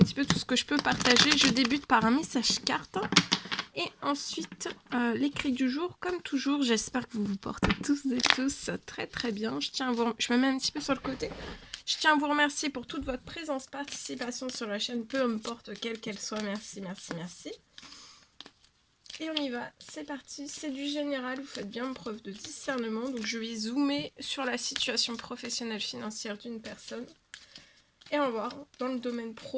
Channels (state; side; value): identical; both; correlation 1.00